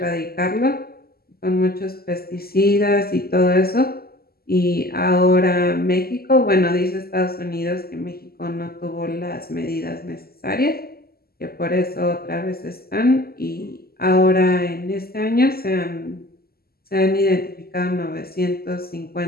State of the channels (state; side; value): late; right; 0.45 ms